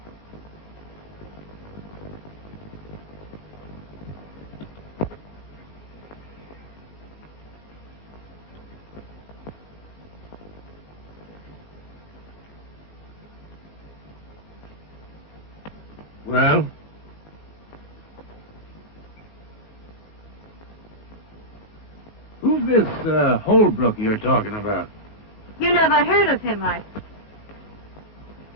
Well? Who's this Holbrook you're talking about? You never heard of him,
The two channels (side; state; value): right; late; 14 ms